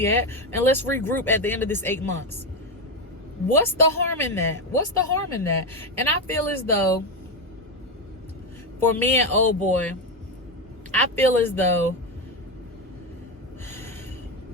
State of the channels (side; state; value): both; normal; correlation 0.11